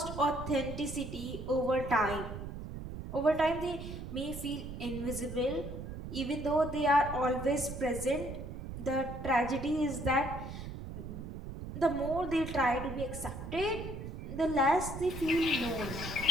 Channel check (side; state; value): right; noise; rumble, 8 dB below the sound